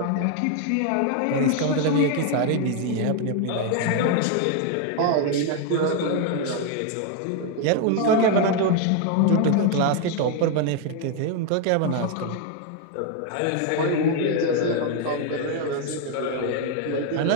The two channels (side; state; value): both; different; correlation 0.00